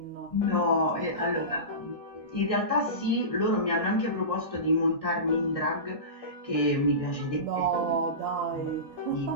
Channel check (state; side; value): late; right; 1.6 ms